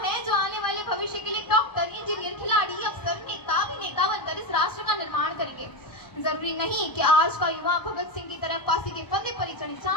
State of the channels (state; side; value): late; right; 1.0 ms